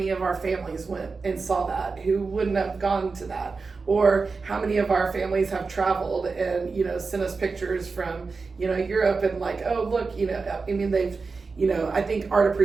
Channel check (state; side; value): quieter; left; 4.4 dB